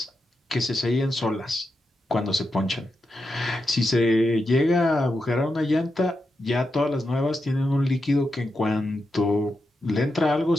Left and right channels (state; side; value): normal; both; correlation 0.87